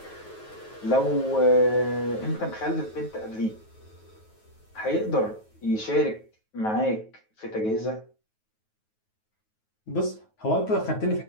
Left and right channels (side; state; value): right; late; 9.3 ms